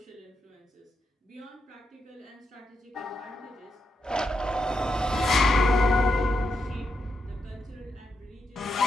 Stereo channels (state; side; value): normal; both; correlation 0.83